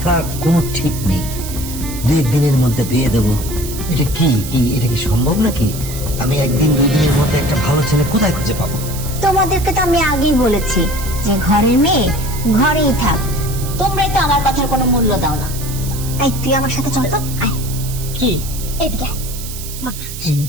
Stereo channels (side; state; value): right; noise; hiss, 11 dB below the sound